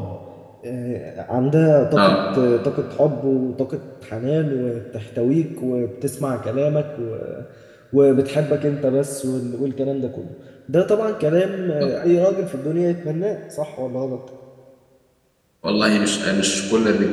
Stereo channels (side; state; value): both; identical; correlation 1.00